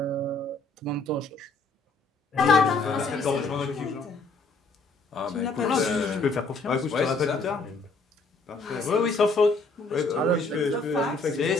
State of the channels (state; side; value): quieter; right; 3.5 dB